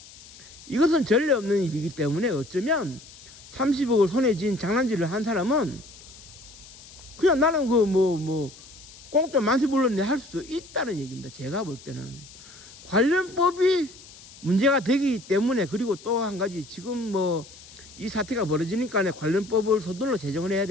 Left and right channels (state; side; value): noise; left; hiss, 20 dB below the sound